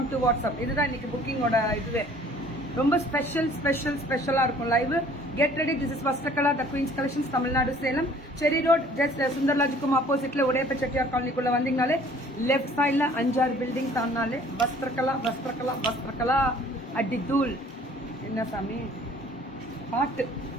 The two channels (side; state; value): both; normal; correlation 0.54